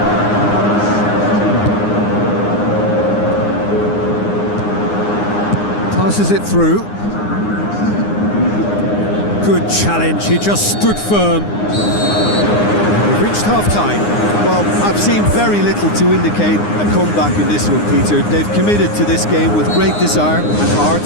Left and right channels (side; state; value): right; late; 9.7 ms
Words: Passes it through. Good challenge, he just stood firm. We've reached half-time. Well, I've seen very little to indicate a comeback in this one, Peter. They've committed to this game with great desire and heart,